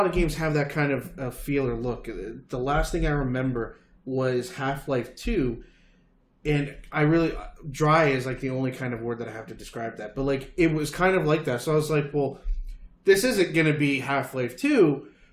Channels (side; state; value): both; identical; correlation 1.00